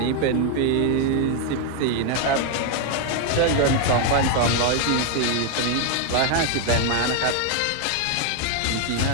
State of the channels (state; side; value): different; both; correlation 0.00